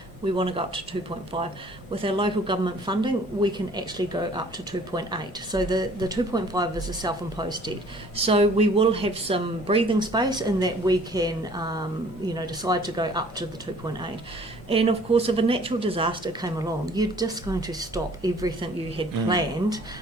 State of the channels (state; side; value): normal; both; correlation 0.54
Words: We want to go up to 2.5. With our local government funding, we can actually go up to 2.8. So the 2.5 is a self-imposed debt. So we will have some breathing space in that we can, decide to go up to the 2.8. And of course, if a natural disaster came along, you're just going to stop everything you had planned